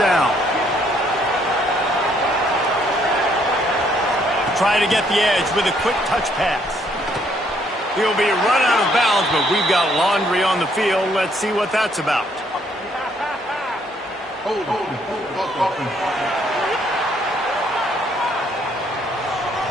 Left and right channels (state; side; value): normal; both; correlation 0.68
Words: Trying to get the edge with a quick touch pass. He'll be run out of bounds, but we've got laundry on the field. Let's see what that's about.